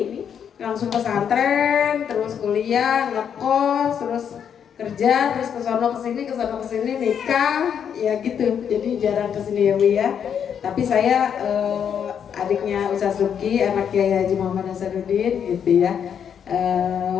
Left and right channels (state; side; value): quieter; right; 8.1 dB